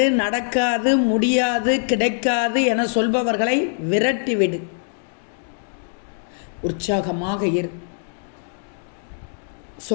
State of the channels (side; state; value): right; silent; digital silence